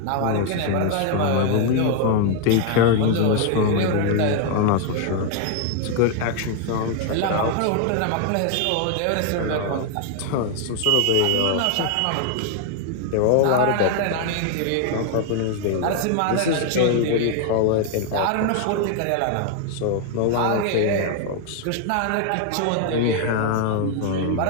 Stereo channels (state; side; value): different; both; correlation 0.00